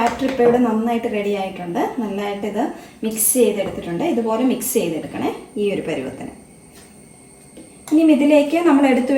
ഇപ്പോൾ ഇവിടെ നന്നായിട്ട് റെഡി ആയിട്ടുണ്ട്. നന്നായിട്ട് ഇത് മിക്സ് ചെയ്തെടുത്തിട്ടുണ്ട്. ഇതുപോലെ മിക്സ് ചെയ്തെടുക്കണേ ഈ ഒരു പരുവത്തിന്. ഇനി ഇതിലേക്ക് നമ്മൾ എടുത്തു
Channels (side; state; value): both; identical; correlation 1.00